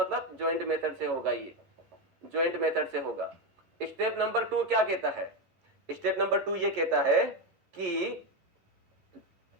ज्वाइंट मेथड से होगा, ये ज्वाइंट मेथड से होगा। स्टेप नंबर 2 क्या कहता है, स्टेप नंबर 2 ये कहता है कि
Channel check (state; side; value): late; left; 10 ms